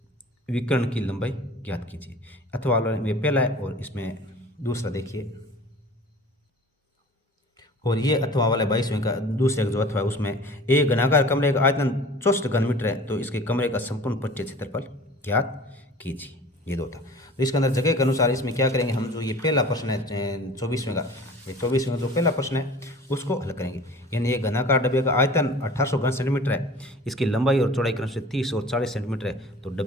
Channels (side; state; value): both; normal; correlation 0.43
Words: विकर्ण की लंबाई ज्ञात कीजिए। अथवा वाला में पहला है और इसमें दूसरा देखिए। और ये अथवा वाला 22वें का दूसरे का जो अथवा है उसमें एक घनाकार कमरे का आयतन 64 घन मीटर है, तो इसके कमरे का संपूर्ण पट्टीय क्षेत्रफल ज्ञात कीजिए। ये दो था। तो इसके अंदर जगह के अनुसार इसमें क्या करेंगे हम, जो ये पहला प्रश्न है 24वें का, ये 24वें का जो पहला प्रश्न है उसको हल करेंगे। यानी ये घनाकार डब्बे का आयतन 1800 घन सेंटीमीटर है, इसकी लंबाई और चौड़ाई क्रम से 30 और 40 सेंटीमीटर है, तो